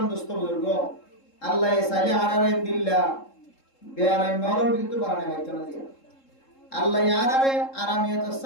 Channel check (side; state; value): right; late; 3.7 ms